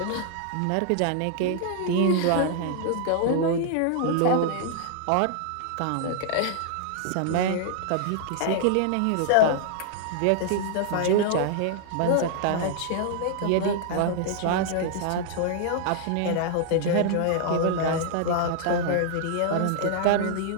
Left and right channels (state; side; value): different; both; correlation -0.01